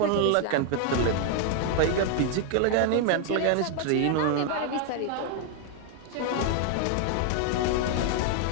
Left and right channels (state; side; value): different; both; correlation 0.00